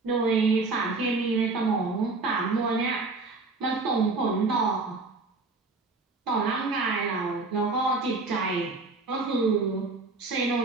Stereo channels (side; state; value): left; quieter; 3.7 dB